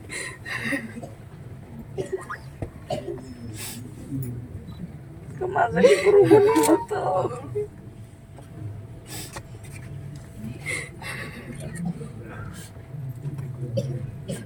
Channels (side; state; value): both; identical; correlation 1.00